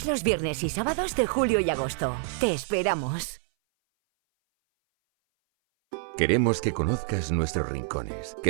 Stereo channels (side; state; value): left; silent; 58 dB below the other